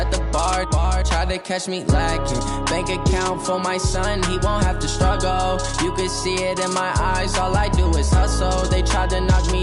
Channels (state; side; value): identical; both; correlation 1.00